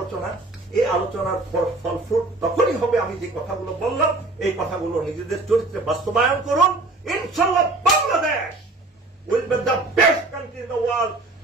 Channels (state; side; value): quieter; left; 3.1 dB